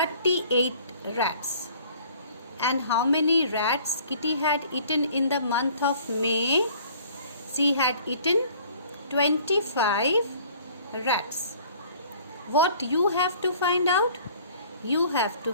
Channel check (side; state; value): both; inverted; correlation -0.52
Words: rats. And how many rats Kitty had eaten in the month of May? She had eaten 25 rats. What you have to find out? You have